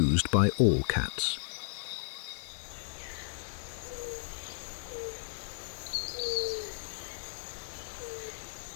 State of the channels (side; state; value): right; silent; digital silence